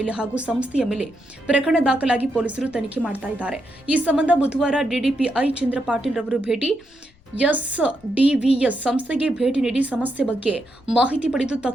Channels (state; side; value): noise; left; rumble, 30 dB below the sound